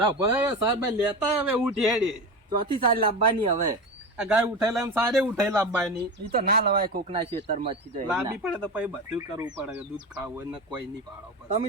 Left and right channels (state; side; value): normal; both; correlation 0.24